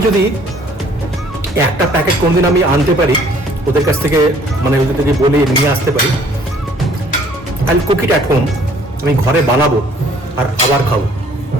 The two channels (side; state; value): both; normal; correlation 0.58